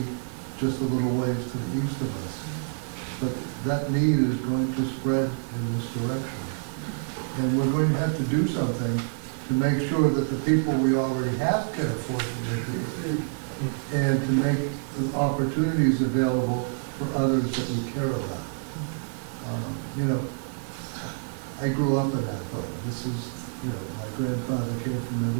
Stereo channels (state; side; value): silent; left; digital silence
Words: just a little ways to the east of us. But that need is going to spread in this direction. And we're going to have to do something to make sure that the people we already have can afford to live here, and to make the opportunities available for others that we care about. I grew up in Athol. This is, my grandfather came from